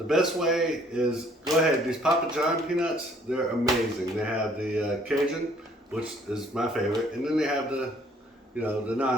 best way is go ahead. These Papa John peanuts, they're amazing. They have the Cajun, which is my favorite, and then they have the, the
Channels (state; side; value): normal; both; correlation 0.61